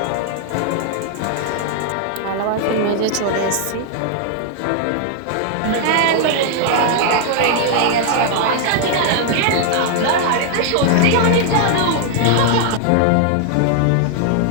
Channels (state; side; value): different; both; correlation 0.00